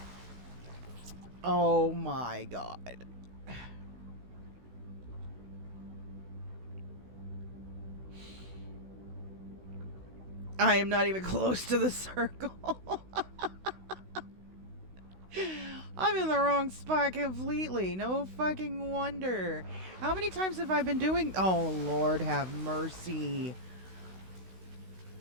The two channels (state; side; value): late; left; 16 ms